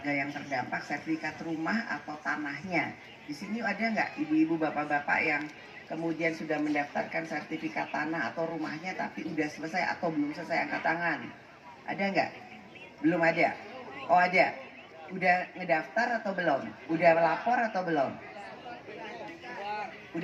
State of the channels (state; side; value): identical; both; correlation 1.00